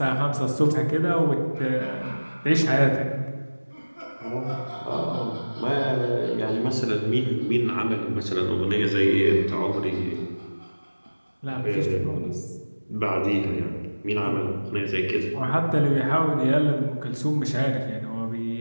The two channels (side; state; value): both; inverted; correlation -1.00